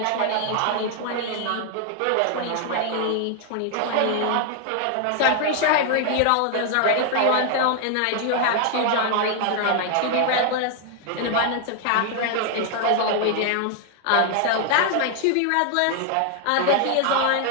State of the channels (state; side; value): different; both; correlation 0.00